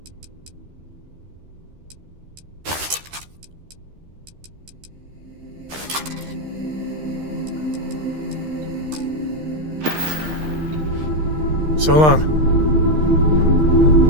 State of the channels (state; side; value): late; left; 13 ms